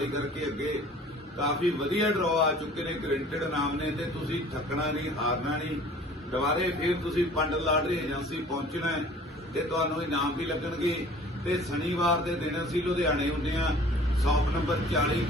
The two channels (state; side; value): normal; both; correlation 0.49